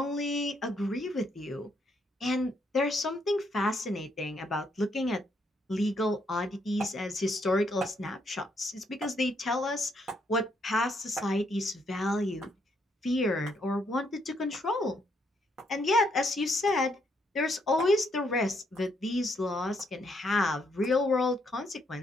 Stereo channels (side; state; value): both; normal; correlation 0.74